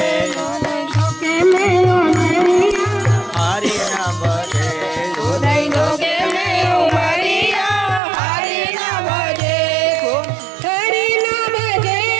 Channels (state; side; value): drops out; left; at 8.0 s